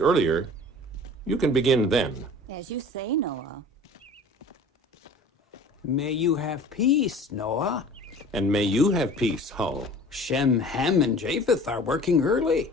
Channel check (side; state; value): both; normal; correlation 0.43